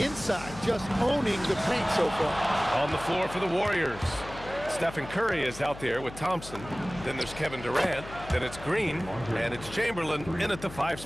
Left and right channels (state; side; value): noise; left; hum, 14 dB below the sound